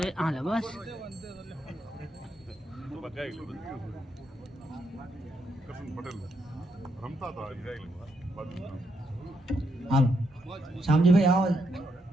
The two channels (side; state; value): both; normal; correlation 0.78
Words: એ હાલે બસ. તું બગાઈ લે બધું. કસન પટેલ રમતા તો આવી જાય બાજુ હાલો શામજીભાઈ આવો.